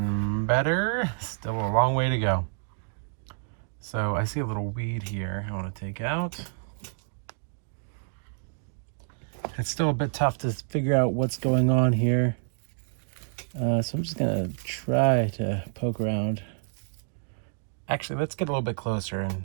Still a long way to go. So I see a little weed here I want to take out. It's still a bit tough to figure out what's going on here. So I'm just gonna try to poke around. Actually, let's get a little bit closer and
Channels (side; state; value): left; silent; digital silence